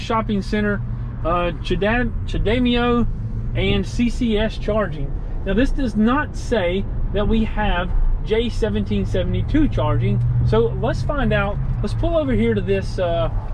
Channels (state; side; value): identical; both; correlation 1.00